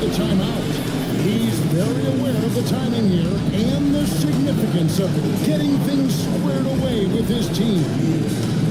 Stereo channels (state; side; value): identical; both; correlation 1.00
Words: timeout. He's very aware of the timing here and the significance of getting things squared away with his team.